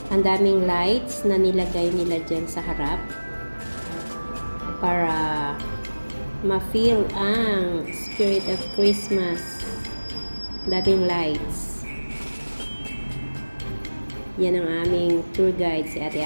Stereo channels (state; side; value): inverted; both; correlation -1.00